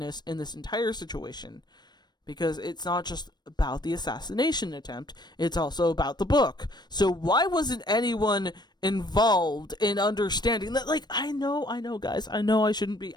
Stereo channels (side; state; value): right; late; 0.21 ms